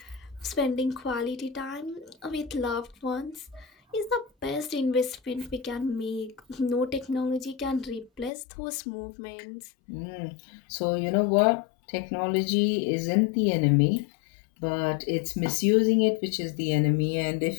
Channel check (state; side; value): drops out; right; at 8.3 s